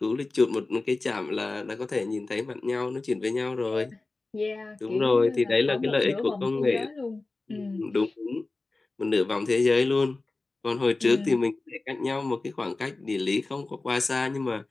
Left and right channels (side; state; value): right; quieter; 3.3 dB